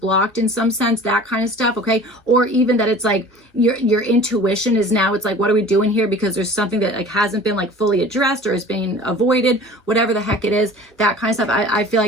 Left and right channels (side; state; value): both; normal; correlation 0.43